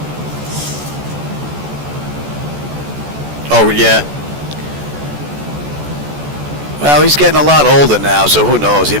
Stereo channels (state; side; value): late; left; 14 ms